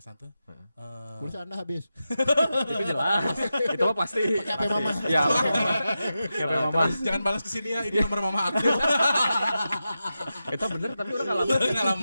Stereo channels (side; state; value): both; inverted; correlation -0.90